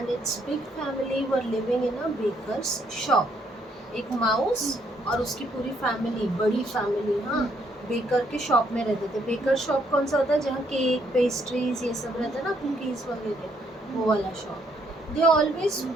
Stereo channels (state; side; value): normal; both; correlation 0.71